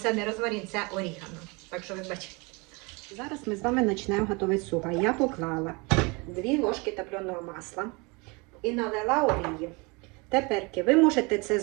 не розмарин, це орігано. Так що ви бачите. Зараз ми з вами почнемо готувати суп. Я поклала 2 ложки топленого масла і налила олії. Тепер ви можете це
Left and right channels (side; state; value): left; quieter; 28.2 dB